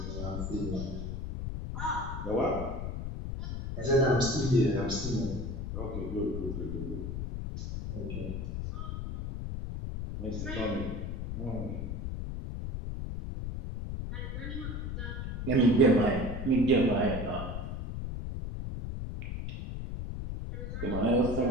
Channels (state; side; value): noise; left; rumble, 4 dB below the sound